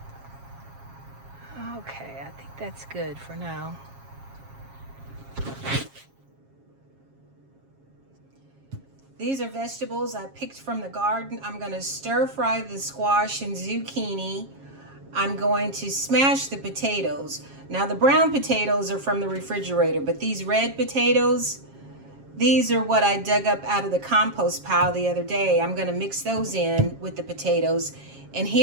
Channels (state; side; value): late; left; 7.4 ms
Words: Okay, I think that's good for now. These are vegetables I picked from the garden. I'm gonna stir fry the squash and zucchini. I'm going to smash the potatoes. Now the brown potatoes are from the refrigerator, but these red potatoes, these are what I dug up out of the compost pile the other day. I'm gonna mix those in with the potatoes. And